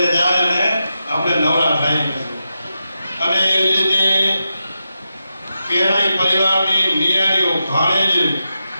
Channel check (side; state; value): both; inverted; correlation -0.88